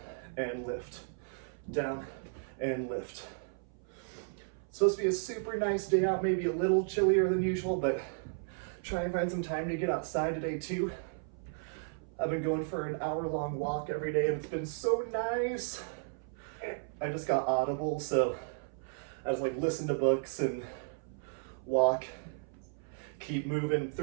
and lift, down and lift. It's supposed to be a super nice day out, maybe a little chillier than usual, but try and find some time to get outside today too. I've been going for an hour-long walk every day and it's been so nice. I just got Audible, so I just like listen to books and walk. Keep moving.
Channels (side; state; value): left; silent; 55 dB below the other